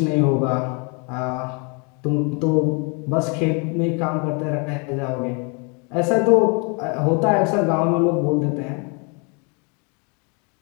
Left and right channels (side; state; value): right; quieter; 34.1 dB